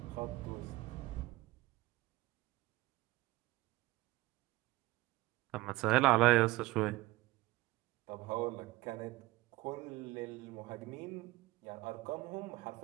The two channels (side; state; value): left; quieter; 19.5 dB